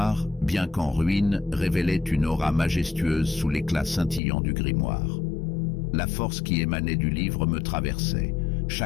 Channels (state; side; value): drops out; right; at 4.2 s